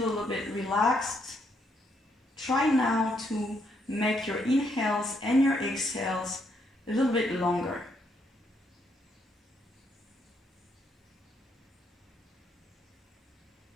a little bit relaxed, try now to make your inhales and your exhales a little bit longer.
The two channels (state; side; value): normal; both; correlation 0.74